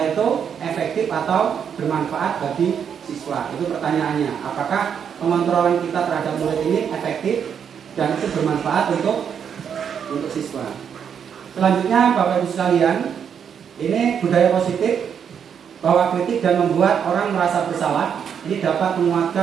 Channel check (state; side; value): quieter; left; 7.7 dB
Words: itu efektif atau bermanfaat bagi siswa? Itu pertanyaannya. Apakah pengontrolan kita terhadap murid ini efektif dan itu bermanfaat untuk siswa? Selanjutnya, Bapak Ibu sekalian, ini budaya positif bahwa kritik dan membuat orang merasa bersalah ini dapat